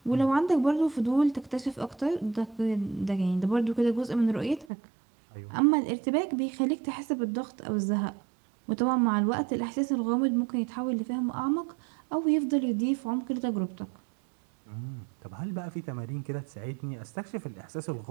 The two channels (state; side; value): drops out; left; at 4.7 s